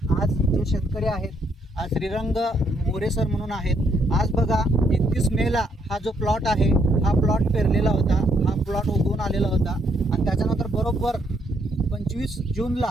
आज जे शेतकरी आहेत आज श्रीरंग मोरे सर म्हणून आहेत. आज बघा 31 मेला हा जो प्लॉट आहे हा प्लॉट पेरलेला होता, हा प्लॉट उगवून आलेला होता आणि त्याच्यानंतर बरोबर 25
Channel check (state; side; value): normal; both; correlation 0.72